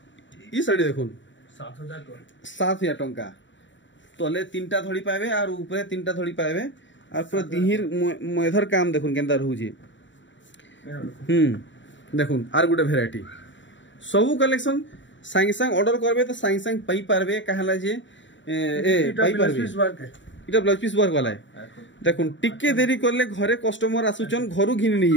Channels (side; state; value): right; late; 0.54 ms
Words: ई साड़ी देखुन 7000 टंका तले तीनटा धड़ी पाबे और ऊपर तीनटा धड़ी पाबे और पूरा दिहिर मेधर काम देखुन केंदा रहू जे देखुन आर गुटे वैरायटी सबु कलेक्शन सांग सांग ऑर्डर करबे तो सांग सांग पई पारबे कहला जे पई पारबे इटा ब्लाउज पीस वर्क वाला है देखुन टिके देरी करले घरे कस्टमर आसुचन घरु घिनि नै